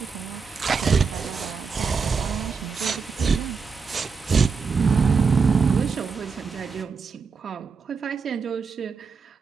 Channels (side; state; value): left; quieter; 5.3 dB